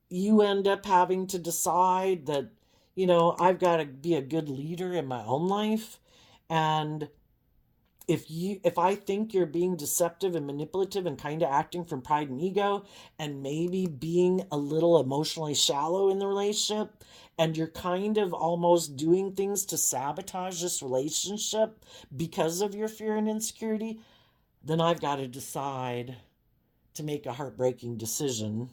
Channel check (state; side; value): identical; both; correlation 1.00